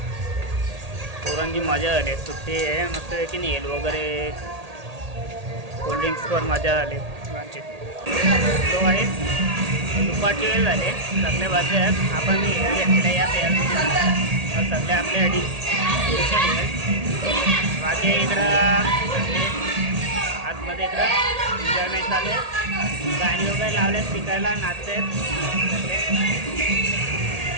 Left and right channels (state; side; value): late; left; 1.8 ms